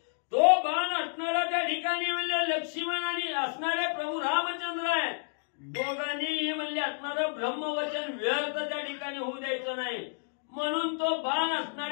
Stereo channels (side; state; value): right; silent; digital silence